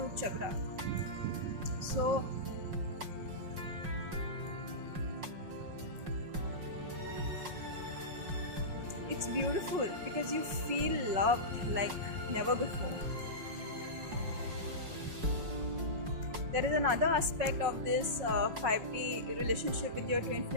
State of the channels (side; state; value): left; late; 5.5 ms